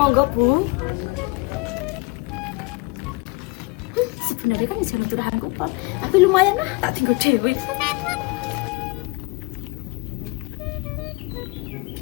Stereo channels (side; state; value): right; quieter; 25.5 dB